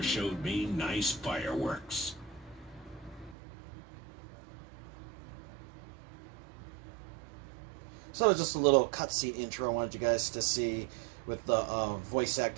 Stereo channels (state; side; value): drops out; left; at 3.4 s